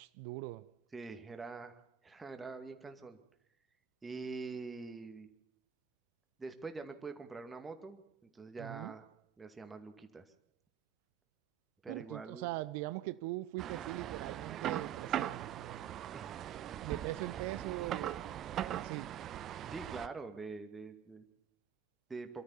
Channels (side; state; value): left; quieter; 9.5 dB